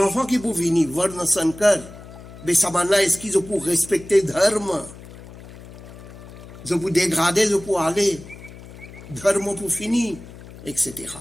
qui pour venir voir dans son cœur, mais ça va là, est-ce qu'ils ont pour respecter dharma, ils ont pour dégrader, ils ont pour aller, dharma pour finir, etc.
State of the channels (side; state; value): left; noise; hum, 17 dB below the sound